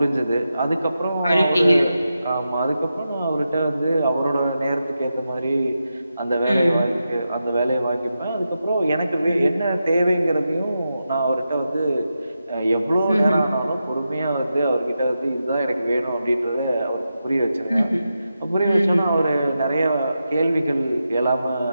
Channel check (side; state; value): both; inverted; correlation -0.89